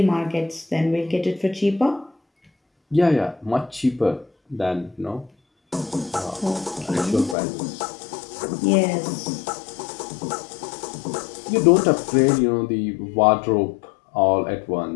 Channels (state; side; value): drops out; right; at 7.4 s